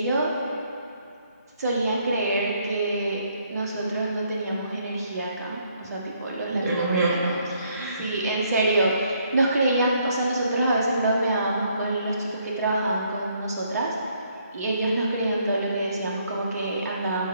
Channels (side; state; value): both; inverted; correlation -0.69